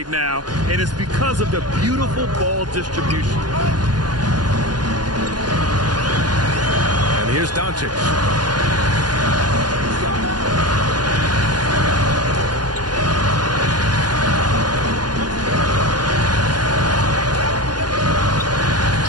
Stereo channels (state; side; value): late; left; 0.70 ms